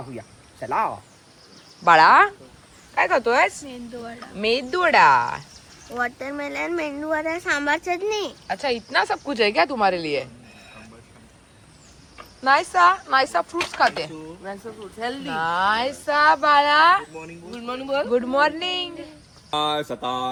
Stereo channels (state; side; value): identical; both; correlation 1.00